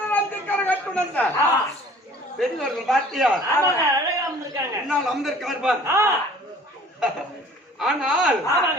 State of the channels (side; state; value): both; normal; correlation 0.51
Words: பெரியவர்கள் பார்த்தியா? முன்னால் அமர்ந்திருக்கார் பார். ஆனால்